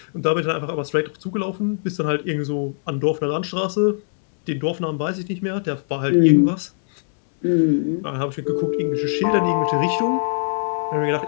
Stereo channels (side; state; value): right; silent; digital silence